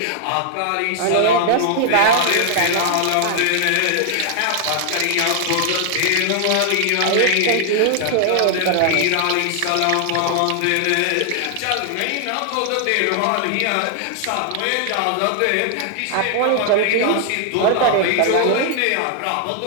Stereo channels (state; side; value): different; both; correlation 0.00